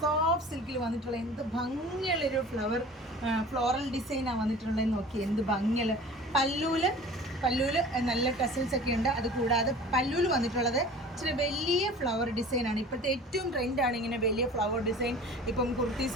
സിൽക്കിൽ വന്നിട്ടുള്ള എന്ത് ഭംഗിയുള്ളൊരു ഫ്ലോറൽ ഡിസൈനാണ് വന്നിട്ടുള്ളതെന്ന് നോക്കി. എന്ത് ഭംഗിയുള്ള പല്ലൂല് നല്ല ടെസൽസ് ഒക്കെ ഉണ്ട്. അതുകൂടാതെ പല്ലൂല് വന്നിട്ടുള്ളത് ഇച്ചിരി വലിയ ഫ്ലവർ ഡിസൈനാണ്. ഇപ്പോഴത്തെ ഏറ്റവും ട്രെൻഡാണ് ഇങ്ങനെ വലിയ ഫ്ലവർ ഡിസൈൻ. ഇപ്പം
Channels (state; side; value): normal; both; correlation 0.42